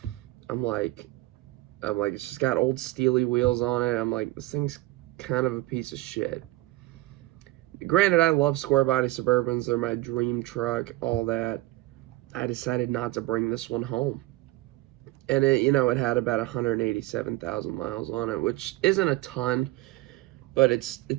I'm like, it's just got old steely wheels on it. I'm like, this thing's kind of a piece of shit. Granted, I love square body Suburbans, they're my dream truck, all that. I decided not to bring this one home. And it, you know, it had about 187,000 miles on it, which isn't a ton, but it's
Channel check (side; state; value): left; quieter; 18.5 dB